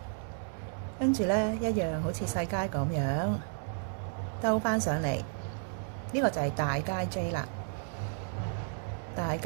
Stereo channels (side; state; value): left; silent; digital silence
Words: 跟住咧一樣好似細階咁樣兜翻上嚟。呢個就係大階 J 啦。大